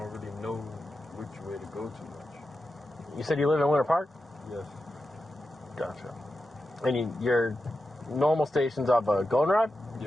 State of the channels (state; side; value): normal; both; correlation 0.90